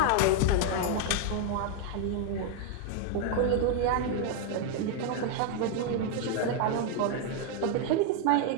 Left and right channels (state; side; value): different; both; correlation 0.00